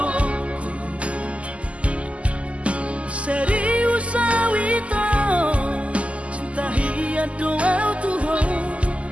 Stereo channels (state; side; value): late; left; 0.061 ms